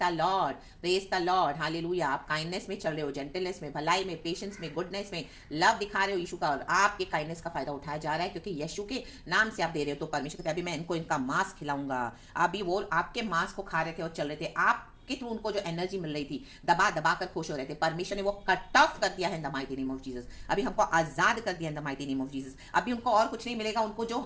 the Lord, praise the Lord, hallelujah. आप काइंडनेस में चल रहे हो, जेंटलनेस में, भलाई में, पेशेंस में, गुडनेस में, लव दिखा रहे हो यीशु का, और आपके काइंडनेस का फायदा उठाया जा रहा है, क्योंकि यीशु के नाम से आप दे रहे हो। तो परमेश्वर कहते हैं, अभी मैं इनको इनका मांस खिलाऊंगा। अभी वो आपके मांस को खा रहे थे और चल रहे थे, आप के थ्रू उनको जो एनर्जी मिल रही थी, दबा दबा कर खुश हो रहे थे, परमेश्वर ने वो कट ऑफ कर दिया है इन the mighty name of Jesus. अभी हमको आजाद कर दिया इन the mighty name of Jesus. अभी उनको और कुछ नहीं मिलेगा, उनको जो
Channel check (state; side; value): identical; both; correlation 1.00